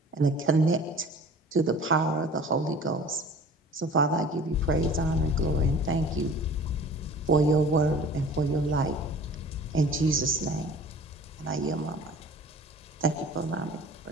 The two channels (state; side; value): normal; both; correlation 0.45